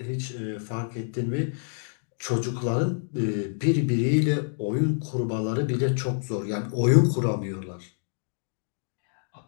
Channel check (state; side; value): silent; right; digital silence